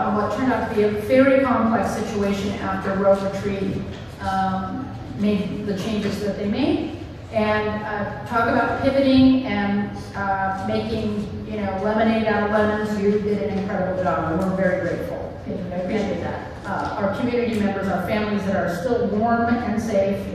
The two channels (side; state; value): both; identical; correlation 1.00